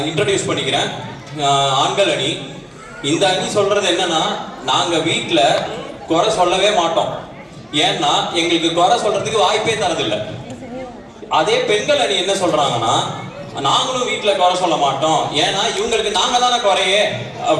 இன்ட்ரடியூஸ் பண்ணிக்கிறேன். ஆண்கள் அணி. இந்த அணி சொல்றது என்னன்னா, நாங்க வீட்டில் குறை சொல்லவே மாட்டோம். ஏன்னா எங்களுக்கு குறை சொல்றதுக்கு வாய்ப்பே தரதில்லை. அதே பெண்கள் அணி என்ன சொல்றாங்கன்னா, நாங்களும் வீட்டில் குறை சொல்ல மாட்டோம், ஏன்னா இவங்களுக்கு நாங்க தானே குறையே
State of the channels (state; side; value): identical; both; correlation 1.00